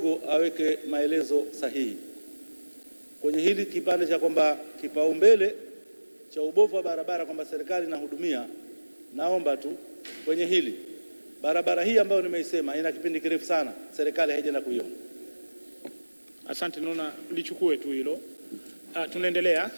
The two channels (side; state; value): both; inverted; correlation -1.00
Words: aweke maelezo sahihi kwenye hili kipande cha kwamba kipaumbele cha ubovu wa barabara kwamba serikali inahudumia. Naomba tu kwenye hili, barabara hii ambayo nimeisema ina kipindi kirefu sana, serikali haijaenda kuiona. Asante, naona lichukue tu hilo. Tunaendelea.